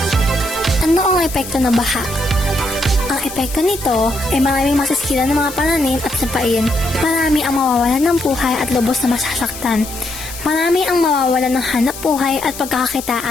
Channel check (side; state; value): left; noise; hiss, 12 dB below the sound